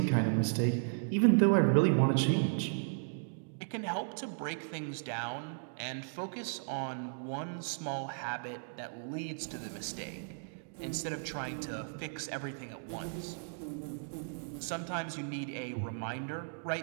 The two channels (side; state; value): left; silent; digital silence